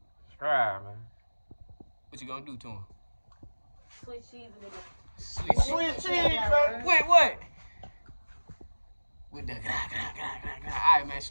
Subscribe, man. What you gonna do to him? Sweet cheese and nigga. Sweet Sweet cheese, baby. Wait, what? With the All right, man.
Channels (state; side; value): inverted; both; correlation -1.00